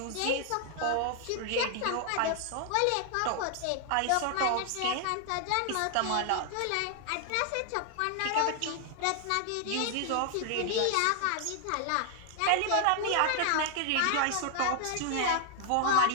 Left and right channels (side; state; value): both; different; correlation 0.00